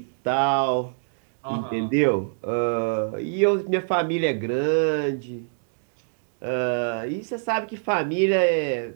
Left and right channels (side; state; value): left; silent; digital silence